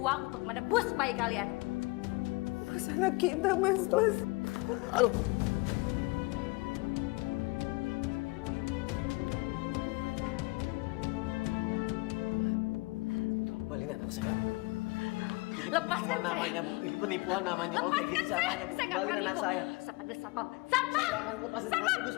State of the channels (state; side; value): quieter; right; 24.8 dB